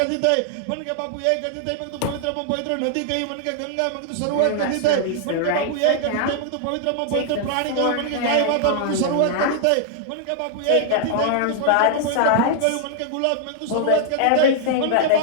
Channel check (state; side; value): different; both; correlation -0.01